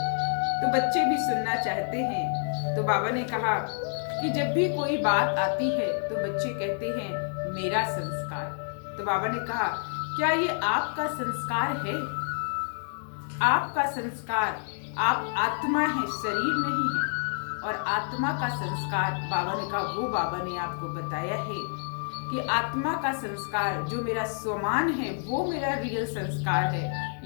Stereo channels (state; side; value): silent; right; digital silence